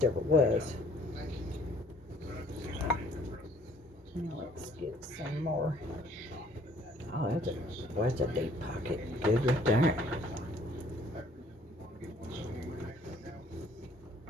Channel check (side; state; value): both; normal; correlation 0.59